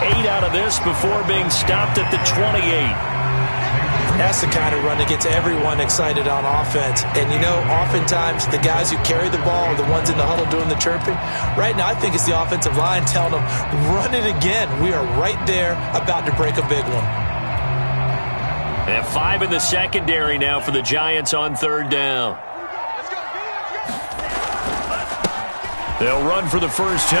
8 out of this before being stopped at the 28. That's the kind of run that gets everyone excited on offense. And, you know, oftentimes the guys who carry the ball are the ones in the huddle doing the chirping. Right now, I think it's the offensive line telling them, run it again. We are right there about to break a big one. And 5 in the secondary now for the Giants on 3rd down. They'll run for the first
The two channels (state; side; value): inverted; both; correlation -1.00